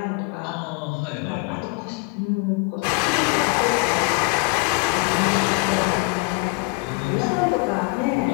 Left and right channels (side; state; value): right; quieter; 30.6 dB